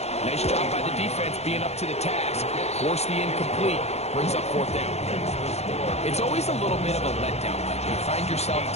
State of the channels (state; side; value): late; right; 0.31 ms